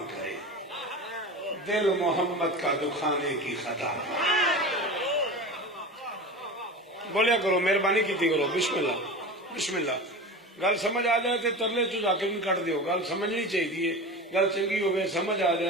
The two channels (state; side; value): normal; both; correlation 0.30